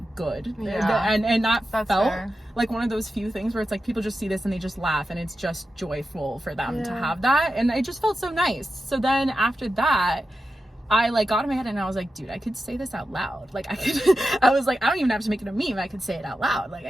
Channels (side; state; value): both; normal; correlation 0.90